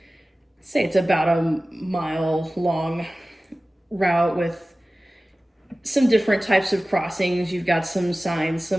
it's about a mile long route with some different types of crossings. You've got some signs,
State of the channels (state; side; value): normal; both; correlation 0.97